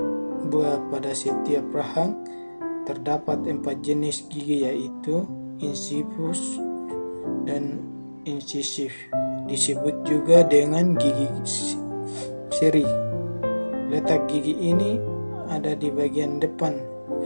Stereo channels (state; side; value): inverted; both; correlation -1.00